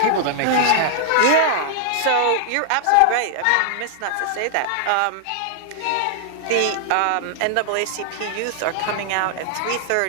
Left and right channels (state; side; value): different; both; correlation -0.01